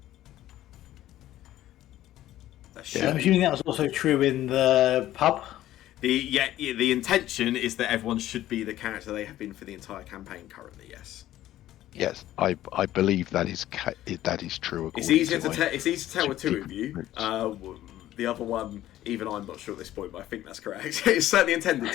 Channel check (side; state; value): right; quieter; 13.8 dB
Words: Yeah. I'm assuming that was also true in the pub. The intention is that everyone should be the character they have been for the entire campaign currently. Yes. Yes, I believe that is true. It's according easier to to my it's easy to tell with two of secret you. notes. The other one, even I'm not sure at this point, but I think that's correct. It's certainly intended